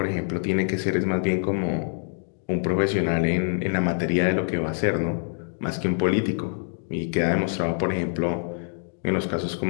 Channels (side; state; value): right; silent; digital silence